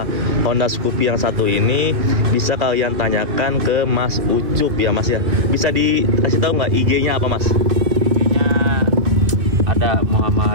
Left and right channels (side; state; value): left; late; 2.4 ms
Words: Honda Scoopy yang satu ini, bisa kalian tanyakan ke Mas Ucup ya Mas ya. Bisa dikasih tahu nggak IG-nya apa Mas? IG-nya ada